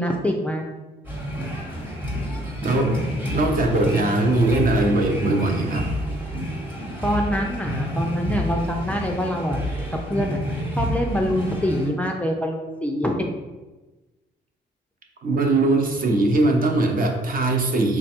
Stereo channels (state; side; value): normal; both; correlation 0.65